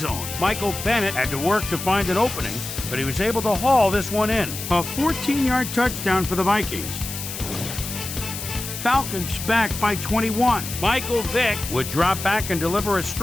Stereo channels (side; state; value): left; noise; hiss, 8 dB below the sound